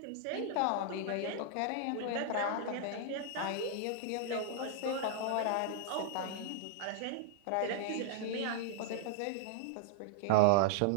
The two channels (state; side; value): different; both; correlation -0.01